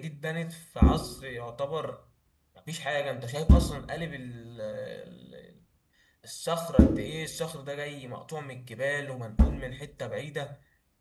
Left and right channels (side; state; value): both; identical; correlation 1.00